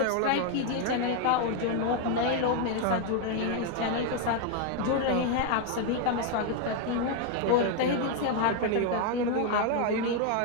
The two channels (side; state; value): both; different; correlation 0.01